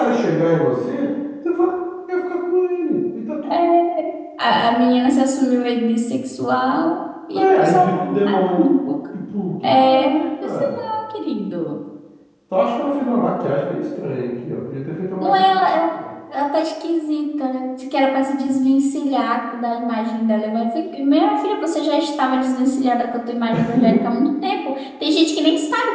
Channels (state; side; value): identical; both; correlation 1.00